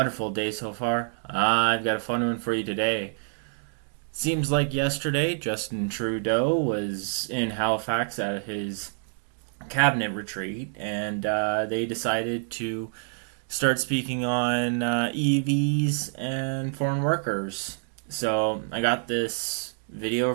day so far. I've got a fun one for you today. Seems like yesterday, Justin Trudeau was in Halifax at his cabinet retreat, and they decided to start speaking on EVs and foreign workers. So, I got this video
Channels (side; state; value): left; silent; digital silence